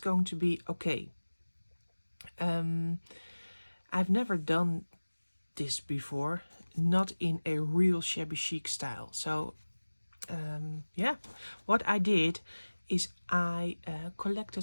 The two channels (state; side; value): inverted; both; correlation -1.00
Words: to be okay. I've never done this before, not in a real shabby chic style. So yeah, what I did is I